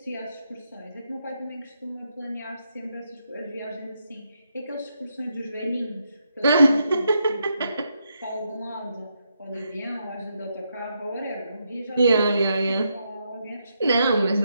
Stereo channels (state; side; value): inverted; both; correlation -0.80